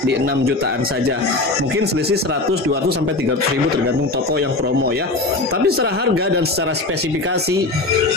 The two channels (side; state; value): right; quieter; 3.1 dB